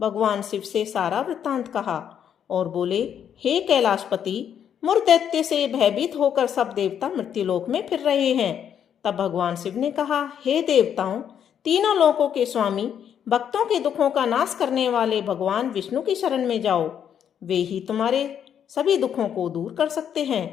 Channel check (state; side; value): quieter; right; 8.8 dB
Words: भगवान शिव से सारा वृत्तांत कहा और बोले, हे कैलाशपति, मुर दैत्य से भयभीत होकर सब देवता मृत्युलोक में फिर रहे हैं। तब भगवान शिव ने कहा, हे देवताओं, तीनों लोकों के स्वामी, भक्तों के दुखों का नाश करने वाले भगवान विष्णु की शरण में जाओ। वे ही तुम्हारे सभी दुखों को दूर कर सकते हैं।